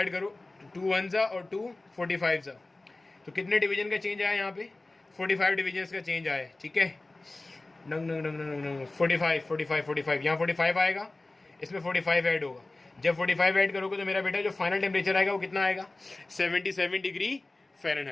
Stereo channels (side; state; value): right; quieter; 3.0 dB